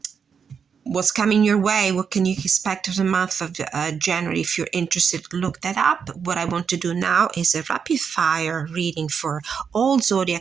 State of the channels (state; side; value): quieter; left; 6.6 dB